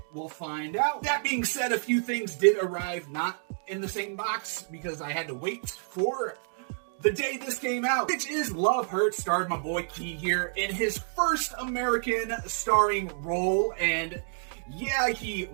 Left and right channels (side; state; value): left; silent; digital silence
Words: We'll find out. That being said, a few things did arrive not in the same box because I had to wait for the day this came out, which is Love Hurts, starred my boy Key here in his first American starring role. And yeah, he